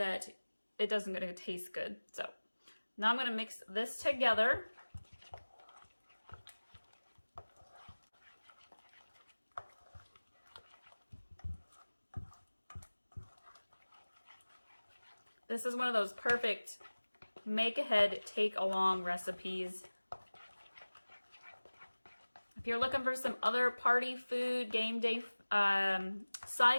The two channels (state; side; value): inverted; both; correlation -1.00